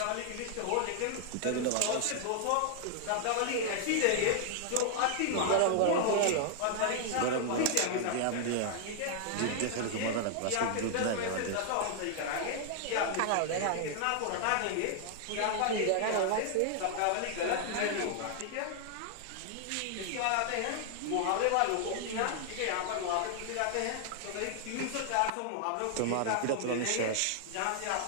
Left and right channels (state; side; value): different; both; correlation 0.00